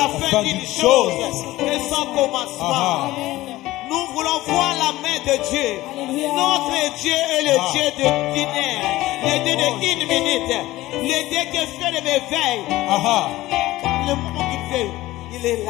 fin d'une chose que son commencement. Nous voulons voir la main de Dieu. Notre Dieu est le Dieu de dîner, le Dieu de une minute, le Dieu qui fait le réveil. Le moment qu'il fait, il est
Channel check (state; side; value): quieter; right; 17.2 dB